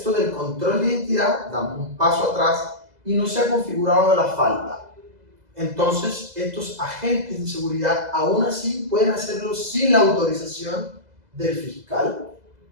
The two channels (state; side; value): late; left; 2.0 ms